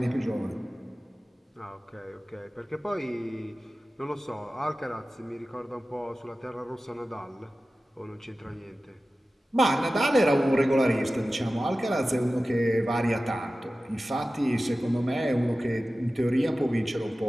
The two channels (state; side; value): normal; both; correlation 0.95